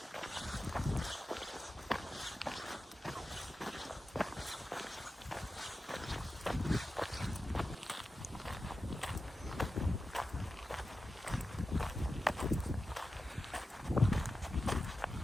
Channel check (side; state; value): both; normal; correlation 0.92